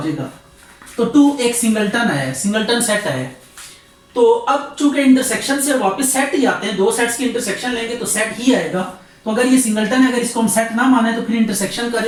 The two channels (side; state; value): both; identical; correlation 1.00